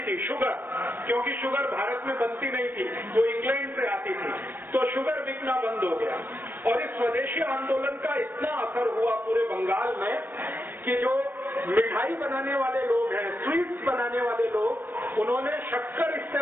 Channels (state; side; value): late; left; 0.093 ms